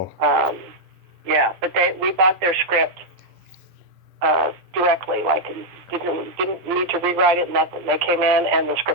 Yeah, but we bought their script directly, like didn't need to rewrite it, nothing. They came in and the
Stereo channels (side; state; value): left; late; 10 ms